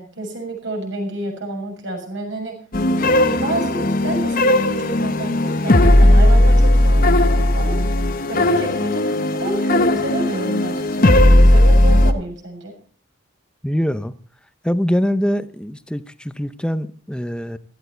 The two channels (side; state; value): both; normal; correlation 0.73